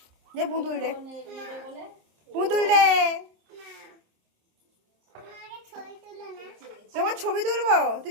দে পুতুল দে, পুতুল দে। তোমার ছবি তুলবো? তুই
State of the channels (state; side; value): late; left; 26 ms